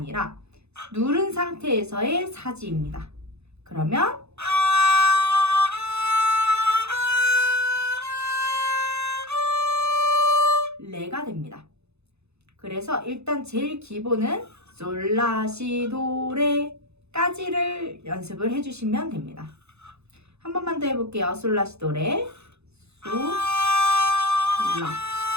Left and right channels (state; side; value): late; left; 0.80 ms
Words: 누른 상태에서의 사지입니다. 그러면 레가 됩니다. 그래서 일단 제일 기본은 솔라시도레까지를 연습을 해주시면 됩니다. 한 번만 더 해볼게요. 솔라시도레, 소, 라,